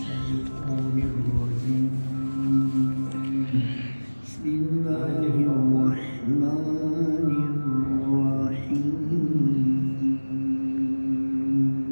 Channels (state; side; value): inverted; both; correlation -1.00